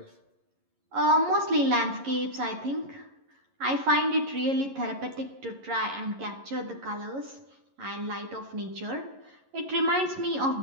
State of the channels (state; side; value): late; left; 11 ms